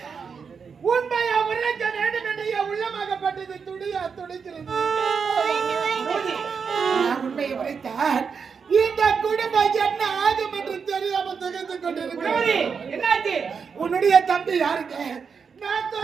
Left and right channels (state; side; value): quieter; left; 6.0 dB